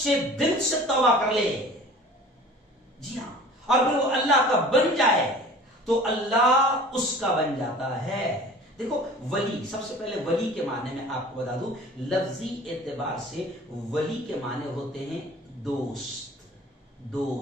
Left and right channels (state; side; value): normal; both; correlation 0.44